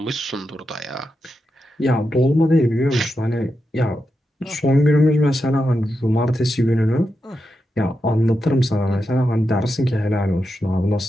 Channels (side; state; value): both; normal; correlation 0.87